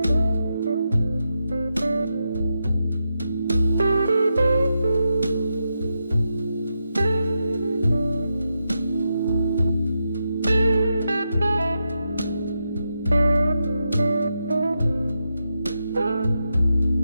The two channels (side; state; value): both; inverted; correlation -0.86